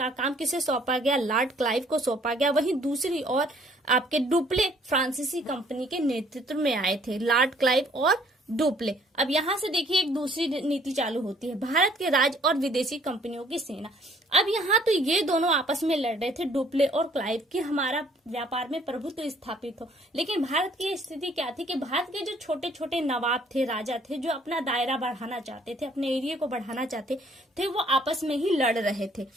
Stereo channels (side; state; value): both; normal; correlation 0.60